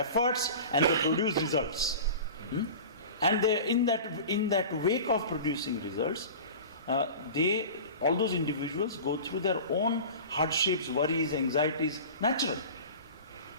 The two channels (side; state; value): both; inverted; correlation -0.35